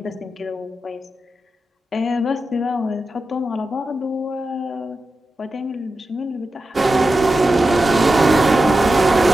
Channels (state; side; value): normal; both; correlation 0.91